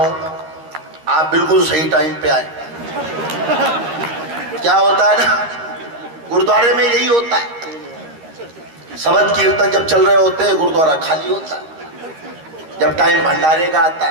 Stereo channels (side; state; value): left; late; 13 ms